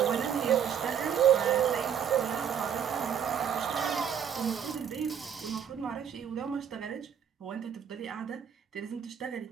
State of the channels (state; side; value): quieter; left; 8.3 dB